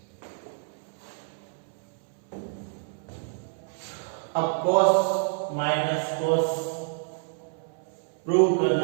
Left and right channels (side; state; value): left; silent; 59 dB below the other